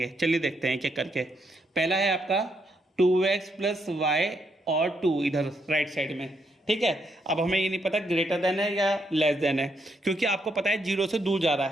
चलिए देखते हैं एक-एक करके। पहला है आपका 2x + y और 2 इधर राइट साइड में, ठीक है। अब हमें ये नहीं पता ग्रेटर देन है या लेस देन है, क्योंकि आपको पता है 0 से दूर जा रहा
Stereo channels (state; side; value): normal; both; correlation 0.77